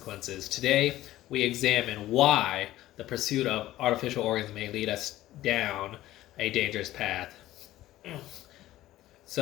Today, we examine why the pursuit of artificial organs may lead us down a dangerous path.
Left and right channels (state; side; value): quieter; right; 15.1 dB